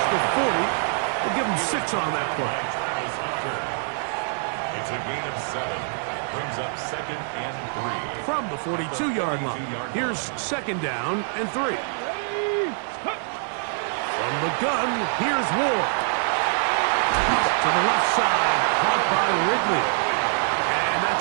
the 40. We'll give him 6 on that play. It's a gain of 7. Brings up 2nd and 3. From the 42-yard line, here's 2nd down and 3. From the gun, here's Ward. To the left side, caught by Ridley. And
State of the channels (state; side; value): silent; left; 62 dB below the other